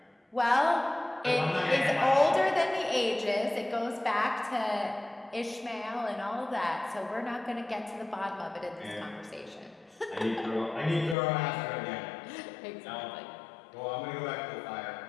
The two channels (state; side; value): drops out; right; at 11.2 s